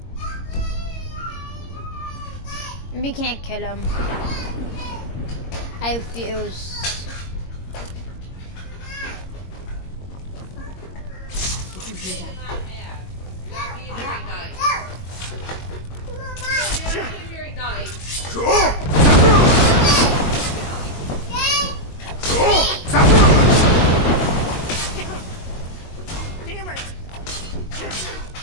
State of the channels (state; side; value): late; right; 22 ms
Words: We can't kill him. I refuse. Did you hear that? Damn it!